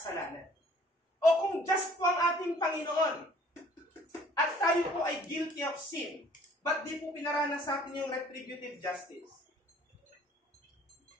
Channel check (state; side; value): normal; both; correlation 0.55